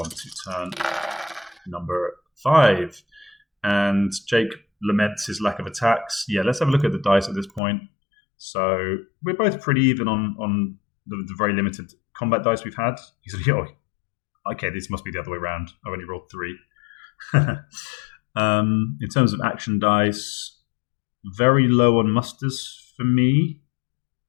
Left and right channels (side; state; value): right; drops out; at 7.6 s